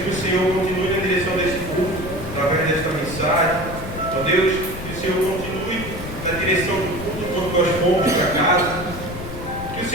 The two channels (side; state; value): left; noise; rumble, 10 dB below the sound